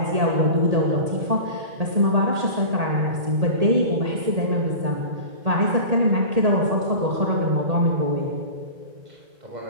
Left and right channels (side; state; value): left; late; 1.8 ms